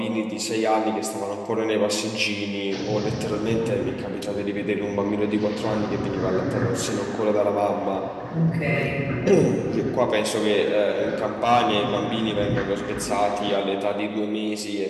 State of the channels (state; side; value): identical; both; correlation 1.00